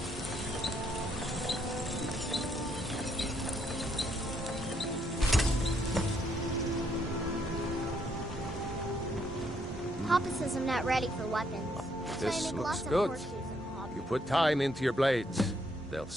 Papa says I'm not ready for weapons. So I This make looks lots of good. horseshoes and hobbies. You put time into your blades. They'll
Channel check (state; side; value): normal; both; correlation 0.72